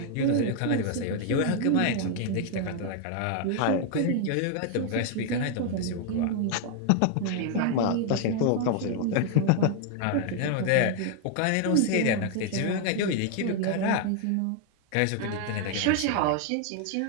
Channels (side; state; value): both; different; correlation 0.00